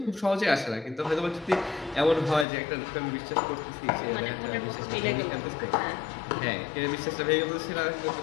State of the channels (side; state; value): right; drops out; at 2.5 s